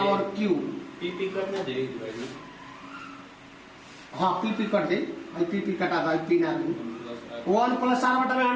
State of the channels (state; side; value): identical; both; correlation 1.00